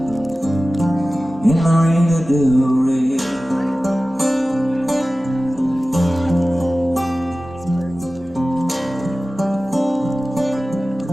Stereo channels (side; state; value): both; normal; correlation 0.96